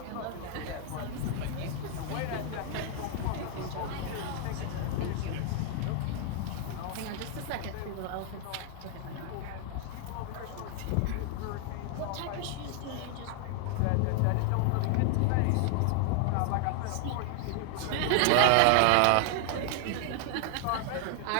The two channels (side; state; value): both; different; correlation 0.00